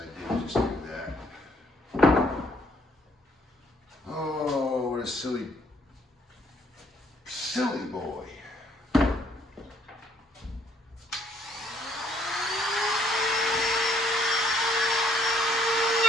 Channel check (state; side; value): normal; both; correlation 0.66